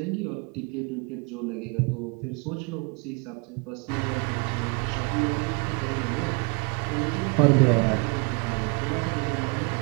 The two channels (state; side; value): quieter; left; 32.4 dB